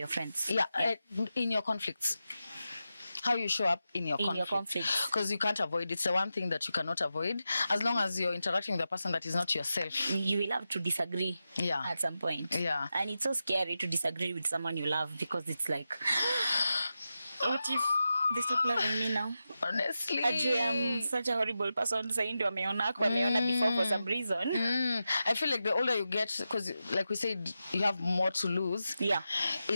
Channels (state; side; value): inverted; both; correlation -0.90